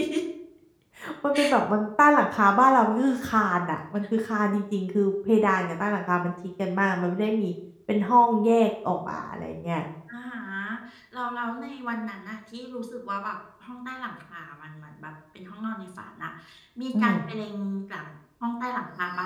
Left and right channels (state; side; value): identical; both; correlation 1.00